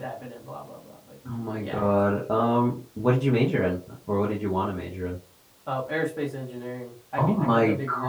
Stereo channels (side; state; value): both; identical; correlation 1.00